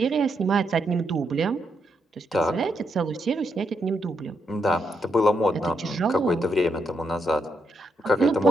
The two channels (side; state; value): both; normal; correlation 0.80